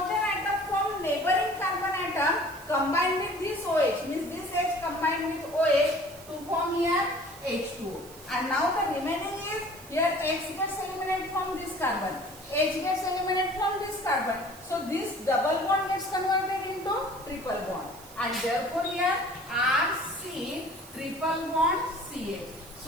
atom from neighboring carbon atom combined with this OH, means this H combined with OH to form here H2O. And now the remaining is here X gets eliminated from this carbon, H gets eliminated from this carbon. So this double bond gets converted into triple bond, and therefore here RC triple bond CH.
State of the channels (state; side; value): noise; right; hiss, 19 dB below the sound